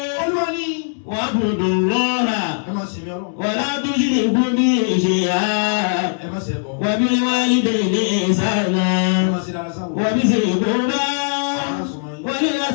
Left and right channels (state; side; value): silent; right; digital silence